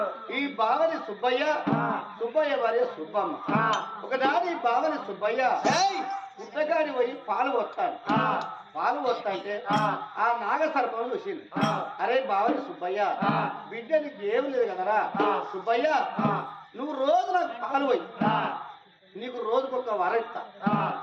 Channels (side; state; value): both; identical; correlation 1.00